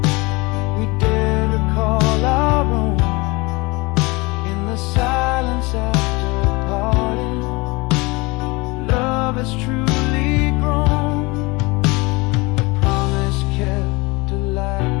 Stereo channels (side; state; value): right; quieter; 25.0 dB